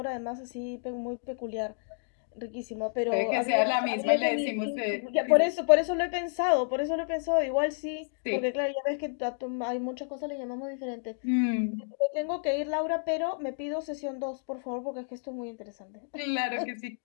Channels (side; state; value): right; silent; digital silence